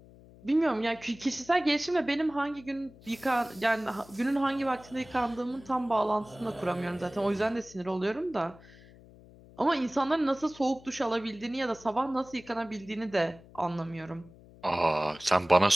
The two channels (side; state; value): left; noise; hum, 22 dB below the sound